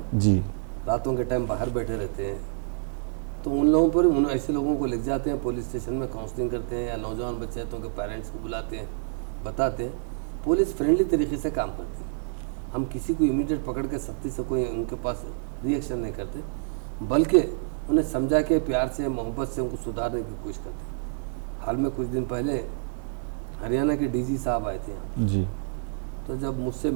जी रातों के टाइम बाहर बैठे रहते हैं, तो उन लोगों पर, उन ऐसे लोगों को ले जाते हैं पुलिस स्टेशन में, काउंसलिंग करते हैं, या नौजवान बच्चे हैं तो उनके पेरेंट्स को बुलाते हैं, बताते हैं। पुलिस फ्रेंडली तरीके से काम करती है। हम किसी को इमीडिएट पकड़ के सख्ती से कोई उनके पास रिएक्शन नहीं करते, बल्कि उन्हें समझा के प्यार से, मोहब्बत से उनको सुधारने की कोशिश करते हैं। हाल में कुछ दिन पहले हरियाणा के DG साहब आए थे यहाँ पर, जी तो जब मुझसे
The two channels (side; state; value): left; silent; digital silence